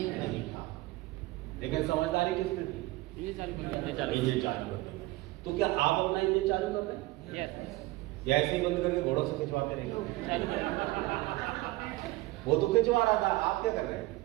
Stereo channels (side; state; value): left; quieter; 19.9 dB